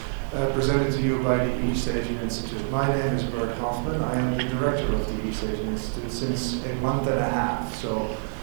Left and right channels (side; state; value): left; silent; digital silence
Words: presented to you by the East Asian Institute. My name is Bert Hofman. I am the director of the East Asian Institute since a month and a half. So